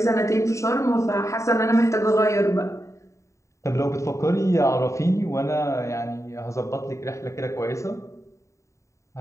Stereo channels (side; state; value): right; late; 0.14 ms